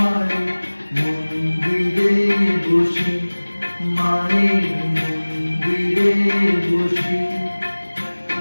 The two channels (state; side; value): inverted; both; correlation -1.00